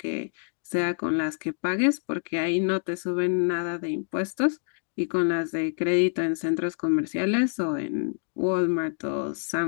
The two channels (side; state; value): right; silent; 60 dB below the other